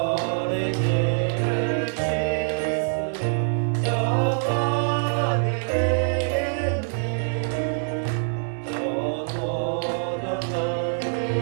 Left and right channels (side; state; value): left; silent; 62 dB below the other